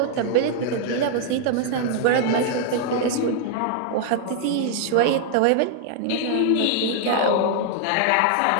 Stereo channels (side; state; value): both; different; correlation 0.00